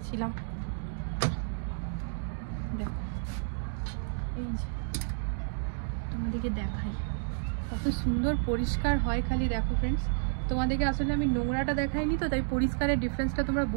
দেখো এই যে তোমাদেরকে দেখাই কত সুন্দর পরিষ্কার হয়। খালি দেখো ফ্রেন্ডস, তোমাদেরকে আসলে আমি নোংরাটা দেখাইনি তো, তাই পরিষ্কারের ডিফারেন্সটা তোমরা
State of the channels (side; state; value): left; silent; digital silence